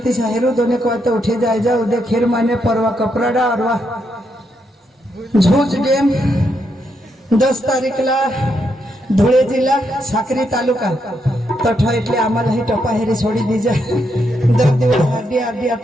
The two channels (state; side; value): normal; both; correlation 0.79